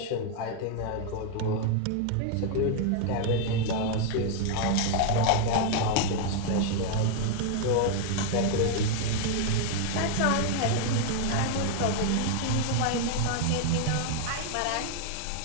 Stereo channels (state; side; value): different; both; correlation 0.00